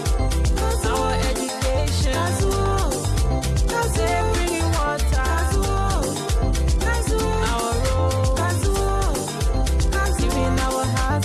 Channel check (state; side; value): identical; both; correlation 1.00